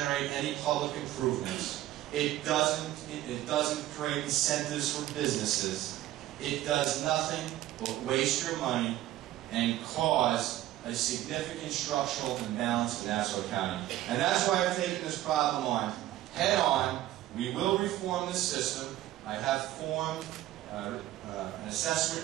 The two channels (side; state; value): left; quieter; 14.5 dB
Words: any public improvements. It doesn't create incentives for businesses. it does nothing but waste your money and cause a significant structural imbalance in Nassau County. And that's why I've taken this problem on head on. We will reform this system. I have formed an